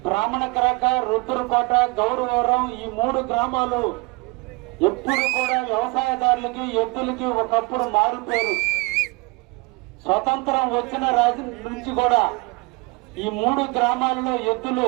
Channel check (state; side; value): quieter; left; 26.5 dB